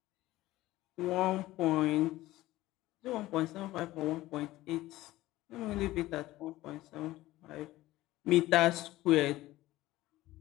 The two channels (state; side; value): quieter; right; 16.9 dB